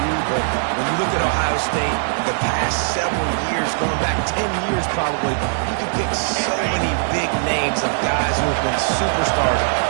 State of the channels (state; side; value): silent; left; 58 dB below the other